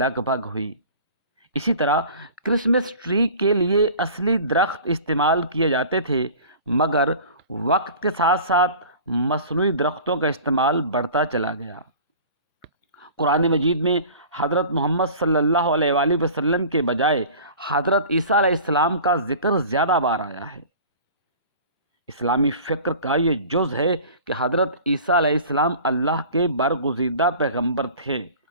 بھگ ہوئی۔ اسی طرح کرسمس ٹری کے لیے اصلی درخت استعمال کیے جاتے تھے، مگر وقت کے ساتھ ساتھ مصنوعی درختوں کا استعمال بڑھتا چلا گیا۔ قرآن مجید میں حضرت محمد صلی اللہ علیہ وآلہ وسلم کے بجائے حضرت عیسیٰ علیہ السلام کا ذکر زیادہ بار آیا ہے۔ اسلامی فکر کا یہ جز ہے کہ حضرت عیسیٰ علیہ السلام اللہ کے برگزیدہ پیغمبر تھے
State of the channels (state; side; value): inverted; both; correlation -0.41